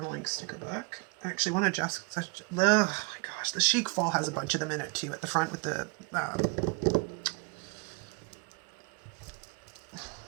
sticker book. I actually want to just, oh my gosh, the Chic Fall has a bunch of them in it too at the front with the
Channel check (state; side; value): quieter; left; 30.2 dB